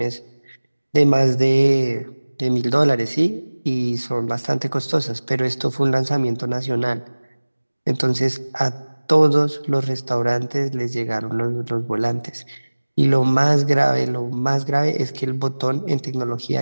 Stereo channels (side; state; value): both; inverted; correlation -1.00